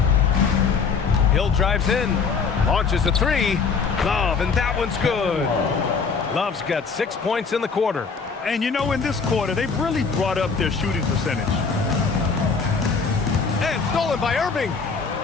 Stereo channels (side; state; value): right; quieter; 5.2 dB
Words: Hill drives in, launches a three. Love, and that one's good. Love's got 6 points in the quarter. And you know, in this quarter, they've really brought up their shooting percentage. And stolen by Irving.